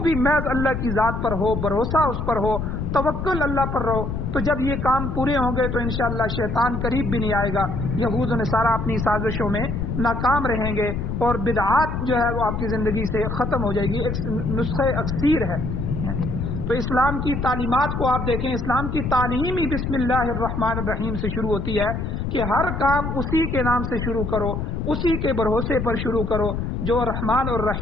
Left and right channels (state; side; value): noise; left; rumble, 3 dB below the sound